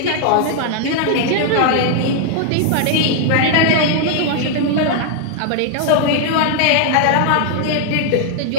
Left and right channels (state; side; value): different; both; correlation -0.01